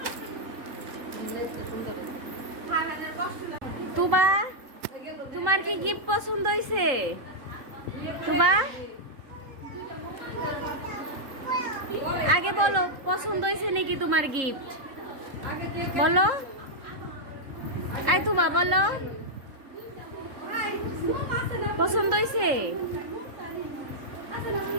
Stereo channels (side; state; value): left; late; 3.7 ms